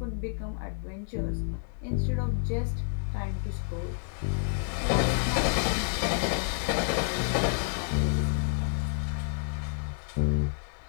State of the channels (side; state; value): right; silent; 58 dB below the other